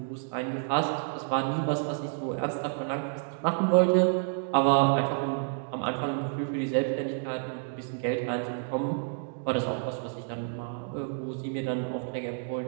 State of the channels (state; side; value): silent; left; digital silence